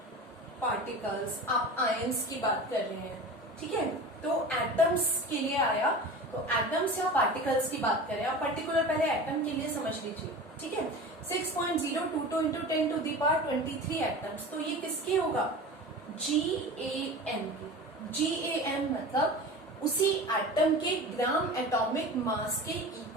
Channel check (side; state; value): both; normal; correlation 0.34